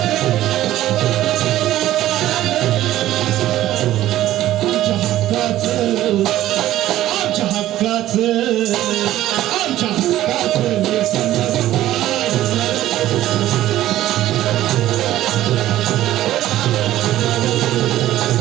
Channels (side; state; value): left; quieter; 14.0 dB